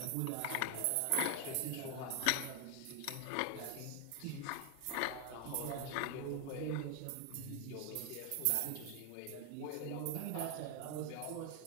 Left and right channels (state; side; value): different; both; correlation 0.01